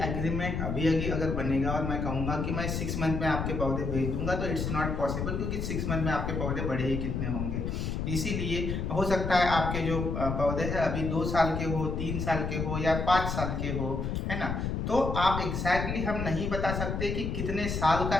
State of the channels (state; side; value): noise; left; rumble, 2 dB below the sound